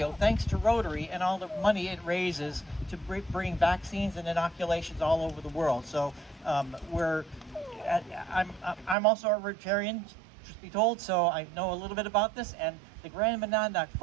thanks to Rotary and all the money it raises to bring vaccines and inoculations all over the world. So I'm also a Rotarian, truth be told, so I know a little bit about this, and the Grand Monadnock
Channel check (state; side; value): drops out; left; at 9.0 s